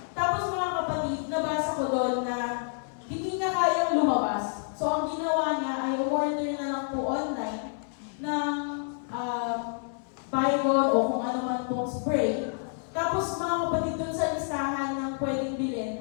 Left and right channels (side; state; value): right; silent; 59 dB below the other